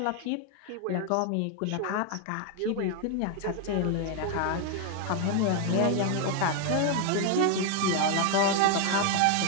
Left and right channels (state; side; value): different; both; correlation 0.01